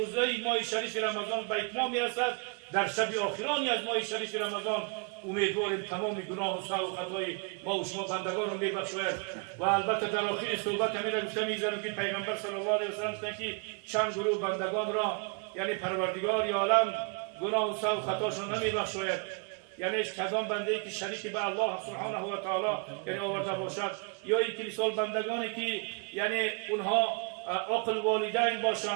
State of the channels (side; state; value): left; quieter; 34.2 dB